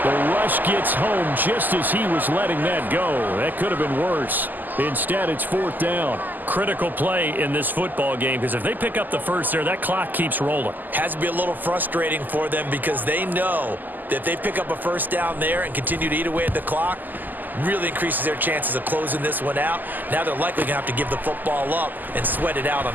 The rush gets home just as he was letting that go. That could have been worse. Instead, it's 4th down. Critical play in this football game because if they pick up the first there, that clock keeps rolling. Has to be a little frustrating for them because they know that if they pick up a 1st down there and continue to eat away at the clock, really increases their chances of closing this one out. Now they're likely going to have to give the football up and sweat it out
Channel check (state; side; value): late; left; 0.086 ms